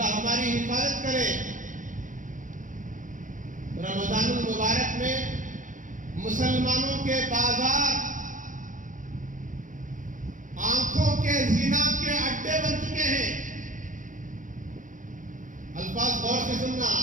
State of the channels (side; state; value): left; late; 0.37 ms